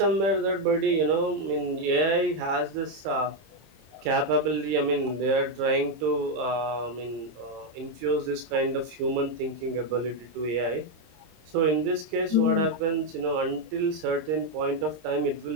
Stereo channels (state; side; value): late; left; 26 ms